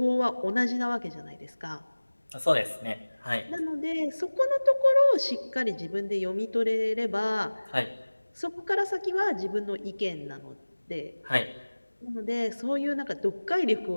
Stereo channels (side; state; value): both; inverted; correlation -1.00